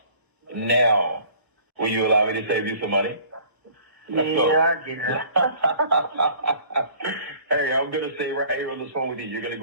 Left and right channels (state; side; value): late; left; 1.0 ms